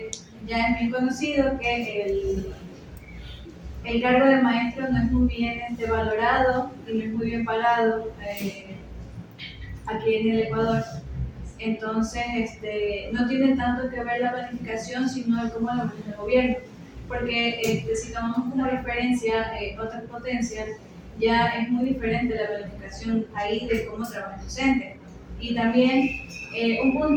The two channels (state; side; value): identical; both; correlation 1.00